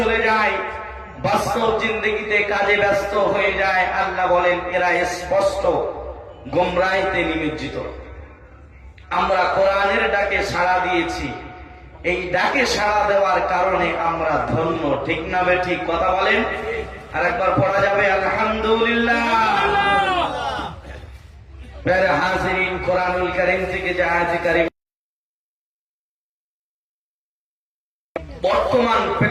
যায়, বাস্তব জিন্দগিতে কাজে ব্যস্ত হয়ে যায়, আল্লাহ বলেন এরা স্পষ্ট গোমরাহিতে নিমজ্জিত। আমরা কোরআনের ডাকে সাড়া দিয়েছি, এই ডাকে সাড়া দেওয়ার কারণে আমরা ধন্য, ঠিক না বেঠিক? কথা বলেন, আর একবার পড়া যাবে আলহামদুলিল্লাহ। প্যারা হাজিরিন, কোরআনুল কারীম থেকে যে আয়াত কারীম বর্তমান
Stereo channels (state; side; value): identical; both; correlation 1.00